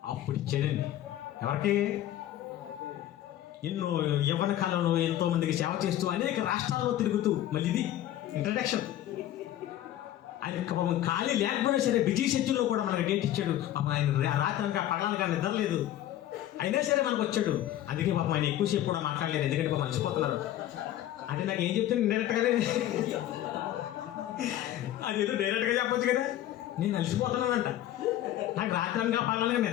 అప్పుడు ఇచ్చాడండి. ఎవరికి? ఎన్నో యవ్వన కాలంలో ఎంతో మందికి సేవ చేస్తూ అనేక రాష్ట్రాల్లో తిరుగుతూ, మళ్ళీ ఇది ఇంట్రడక్షన్. ఆయన పాపం ఖాళీ లేకపోయినా సరే బిజీ షెడ్యూల్లో కూడా మనకు డేట్ ఇచ్చాడు. పాపం ఆయన రాత్రి అనక పగలనక నిద్రలేదు, అయినా సరే మనకు వచ్చాడు. అందుకే పాపం ఆయన ఎక్కువసేపు కూడా మాట్లాడలేదు, ఎందుకంటే పాపం అలసిపోతున్నారు. అంటే నాకు ఏం చెప్తే డైరెక్ట్గానే అదేదో డైరెక్ట్గా చెప్పొచ్చు కదా, నేను అలసిపోతున్నానంట, నాకు రాత్రి అనక పగలనక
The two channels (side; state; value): right; quieter; 12.9 dB